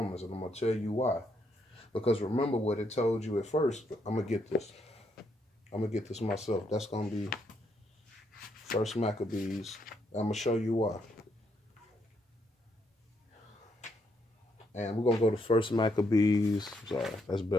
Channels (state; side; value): normal; both; correlation 0.75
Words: and I'm gonna tell you why. Because remember what it told you at first. I'm gonna get this myself. That's gonna be First Maccabees. I'm gonna show you why. And we're gonna go to First Maccabees. Sorry, that's